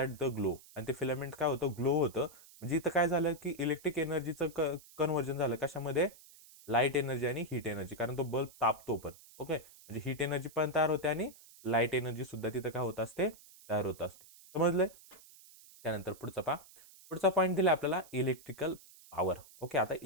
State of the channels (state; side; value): noise; right; hiss, 22 dB below the sound